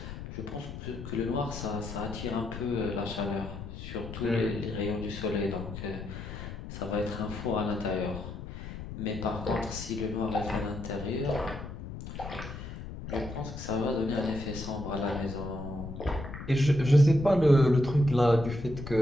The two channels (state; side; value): noise; left; rumble, 9 dB below the sound